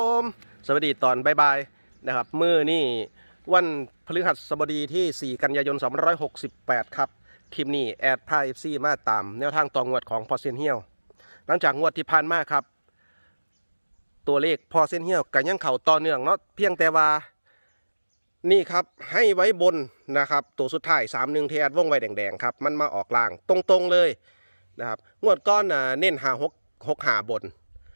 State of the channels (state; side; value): inverted; both; correlation -1.00